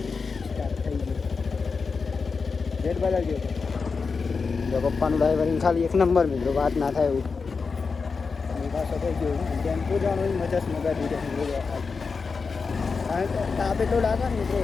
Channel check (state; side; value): quieter; right; 4.9 dB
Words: સ્ટાર્ટ થઈ ગયું. જેટ બદલજો તો પપ્પાનું ડ્રાઈવરિંગ ખાલી એક નંબર મિત્રો વાત ના થાય એવું. પાછો થઈ ગયો ટેમ્પો જવાનું મજા મગા દીધો કારણ કે તાપ એટલો લાગે ને મિત્રો